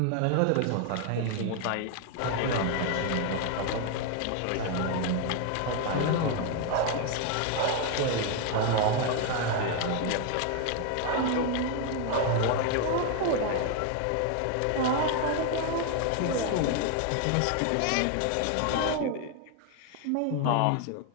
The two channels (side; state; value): both; different; correlation 0.01